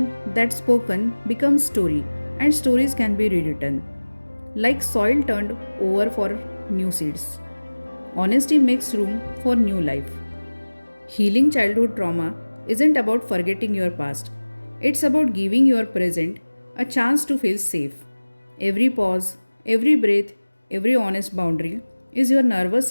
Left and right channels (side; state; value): both; inverted; correlation -1.00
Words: that's spoken becomes story, and stories can be rewritten. Like soil turned over for new seeds. Honesty makes room for new life. Healing childhood trauma isn't about forgetting your past, it's about giving your present a chance to feel safe. Every pause, every breath, every honest boundary is your nervous